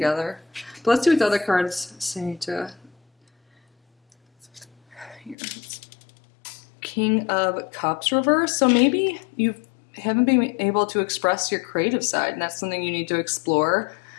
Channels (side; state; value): right; drops out; at 5.4 s